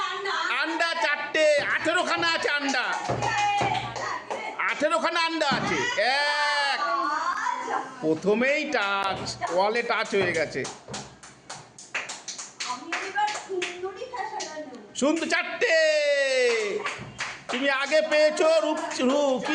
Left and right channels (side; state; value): both; identical; correlation 1.00